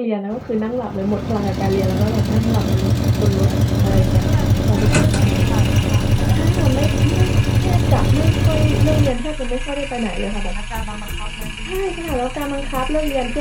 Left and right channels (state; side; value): identical; both; correlation 1.00